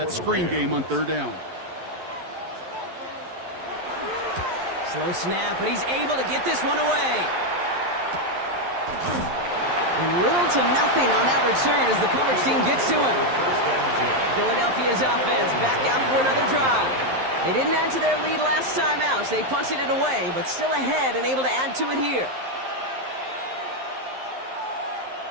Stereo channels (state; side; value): late; left; 11 ms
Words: screen game on third down. Slow snap, but he's able to get this one away. And little to nothing on that return as the coverage team gets to him. Philadelphia's offense back out for another drive. They didn't add to their lead last time out, so they punted it away, but still ahead and able to add to it here.